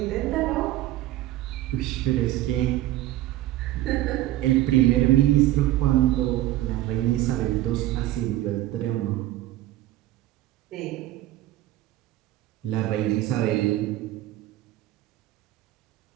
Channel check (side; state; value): left; quieter; 15.1 dB